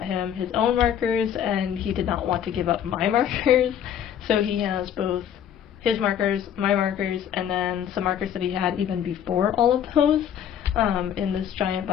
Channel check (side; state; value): right; quieter; 9.4 dB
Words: him his own markers, and he did not want to give up my markers, so he has both his markers, my markers, and then some markers that he had even before all of those in this giant